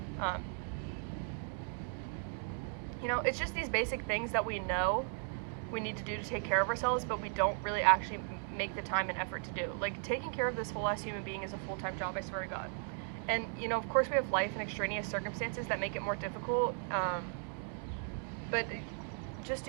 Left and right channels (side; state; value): left; silent; 53 dB below the other